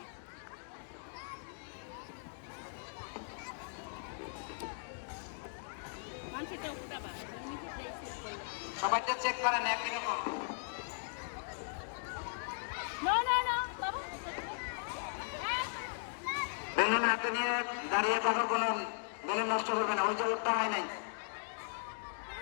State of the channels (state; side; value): silent; right; digital silence